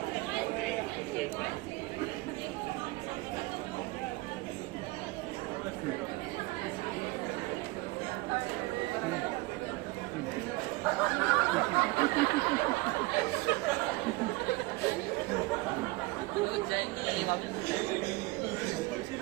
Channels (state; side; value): quieter; left; 22.2 dB